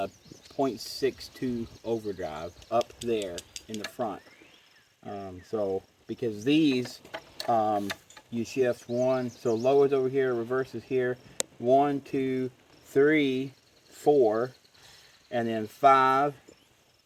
overdrive up there in the front. So because these you shift 1, so low is over here, reverse is here, 1 2 3 4, and then 5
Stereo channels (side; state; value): both; identical; correlation 1.00